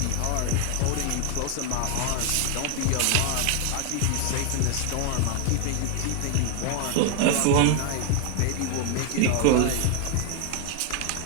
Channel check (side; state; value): both; different; correlation 0.01